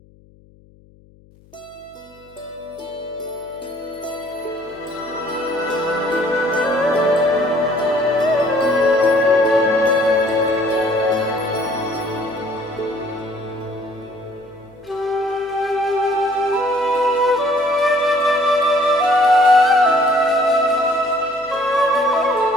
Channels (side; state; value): left; noise; hum, 28 dB below the sound